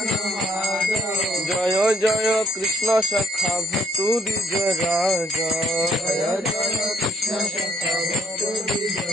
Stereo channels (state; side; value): normal; both; correlation 0.63